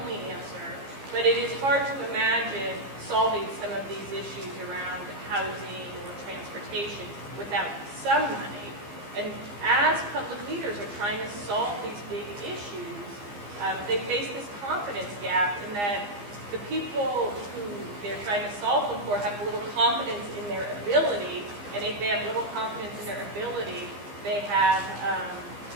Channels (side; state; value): left; late; 15 ms